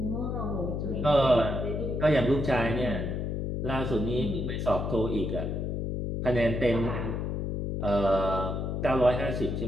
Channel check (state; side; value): noise; left; hum, 2 dB below the sound